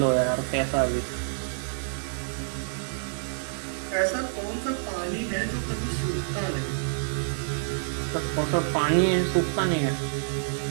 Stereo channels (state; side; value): silent; left; digital silence